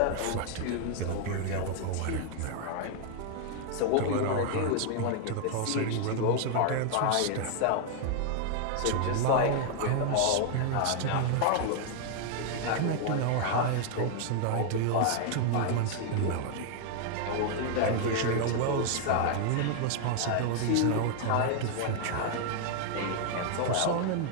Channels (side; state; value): both; different; correlation 0.00